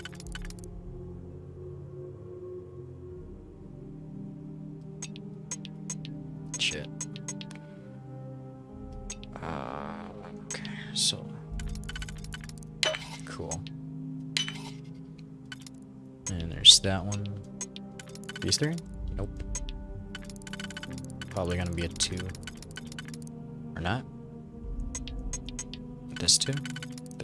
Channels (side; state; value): both; identical; correlation 1.00